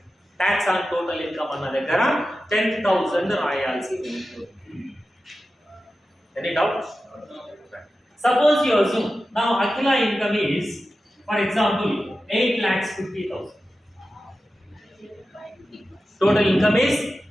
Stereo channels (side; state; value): both; normal; correlation 0.93